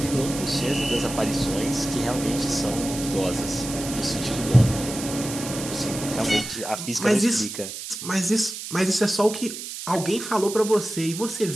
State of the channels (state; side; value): noise; right; hiss, 8 dB below the sound